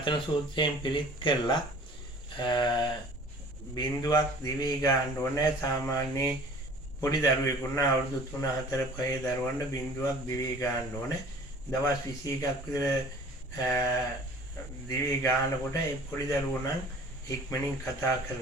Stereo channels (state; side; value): normal; both; correlation 0.48